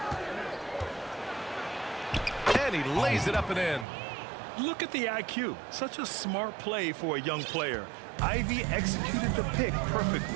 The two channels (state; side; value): drops out; left; at 3.9 s